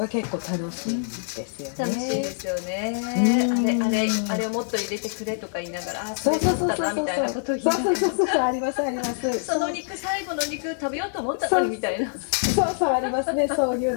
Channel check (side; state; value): right; silent; digital silence